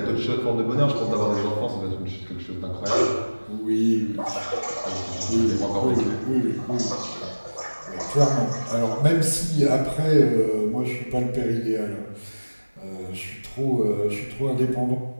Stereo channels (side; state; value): both; inverted; correlation -1.00